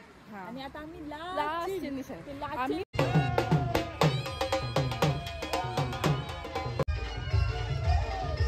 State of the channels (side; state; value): both; identical; correlation 1.00